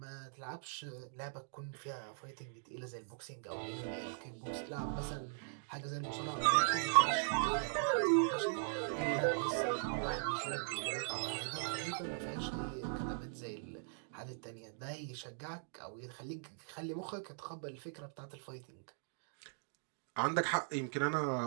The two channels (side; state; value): left; silent; digital silence